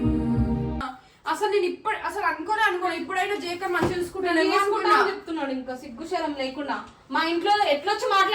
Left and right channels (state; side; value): identical; both; correlation 1.00